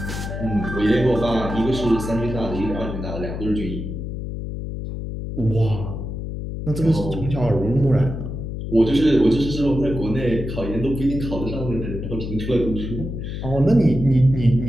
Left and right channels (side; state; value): left; noise; hum, 6 dB below the sound